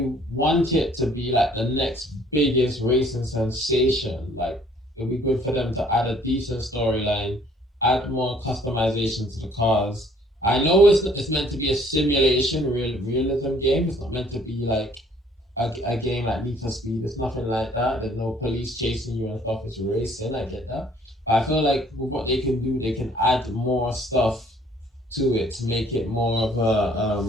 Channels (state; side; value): normal; both; correlation 0.59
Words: want it to be like the next biggest racing sensation, like it'd be good for them to add a decent storyline, add more customization to the cars, I know it's meant to be a simulation, realism game. It's not meant to be like a game like Need for Speed. It's nothing like that. There's no police chasing you and stuff. It's racing. I get that. But I feel like with what they can do, they can add more stuff to it to make it more of a